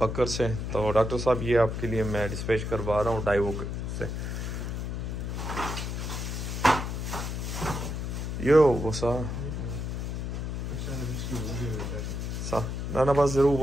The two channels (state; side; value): noise; left; hum, 3 dB below the sound